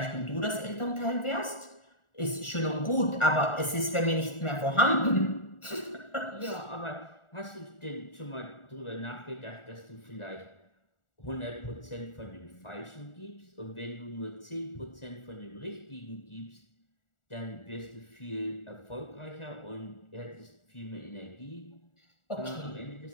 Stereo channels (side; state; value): right; late; 1.4 ms